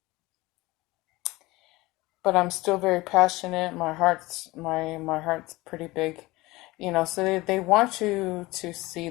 but I'm still very passionate. My heart's pretty big, so they want you to see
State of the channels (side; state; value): right; quieter; 20.6 dB